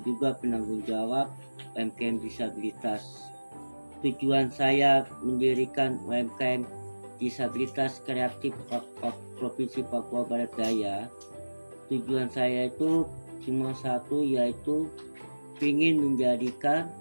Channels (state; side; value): inverted; both; correlation -1.00